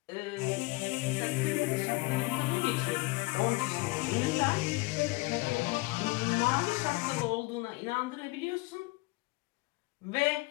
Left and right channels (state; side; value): quieter; right; 24.4 dB